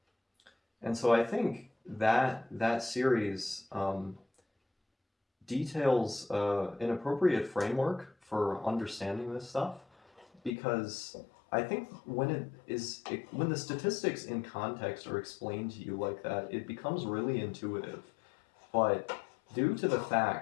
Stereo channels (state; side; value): drops out; right; at 10.6 s